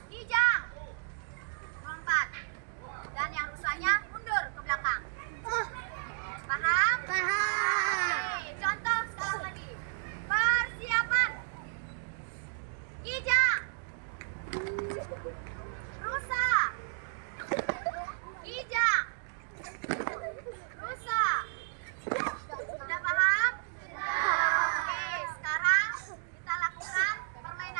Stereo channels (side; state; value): left; silent; digital silence